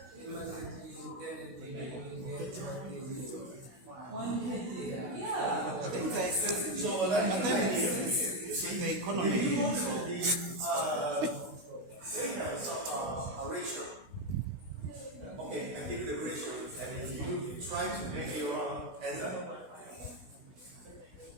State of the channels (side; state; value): left; late; 16 ms